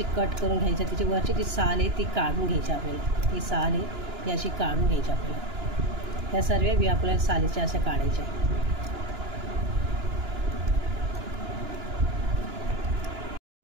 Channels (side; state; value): left; late; 2.9 ms